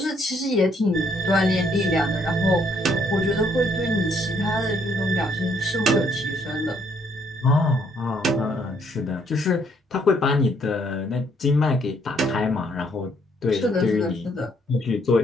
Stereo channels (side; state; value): both; normal; correlation 0.68